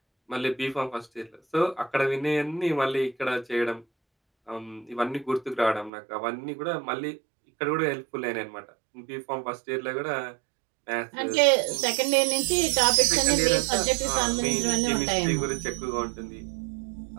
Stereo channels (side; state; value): left; drops out; at 5.9 s